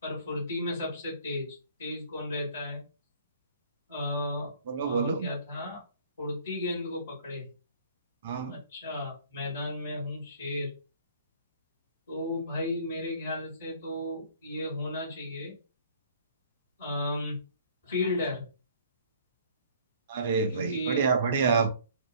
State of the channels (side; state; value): both; inverted; correlation -0.55